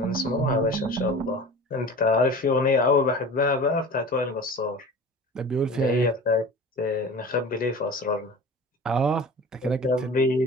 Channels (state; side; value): normal; both; correlation 0.38